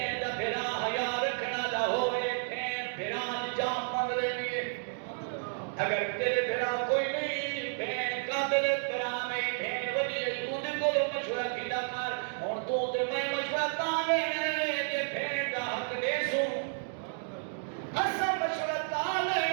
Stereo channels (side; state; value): left; silent; digital silence